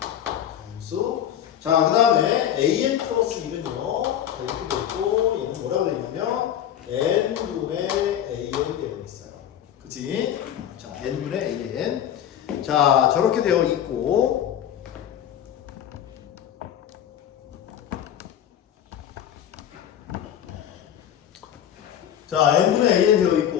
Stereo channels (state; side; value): quieter; right; 10.3 dB